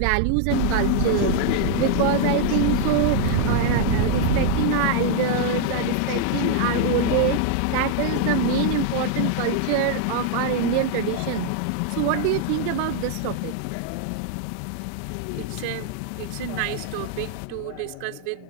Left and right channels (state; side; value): different; both; correlation 0.00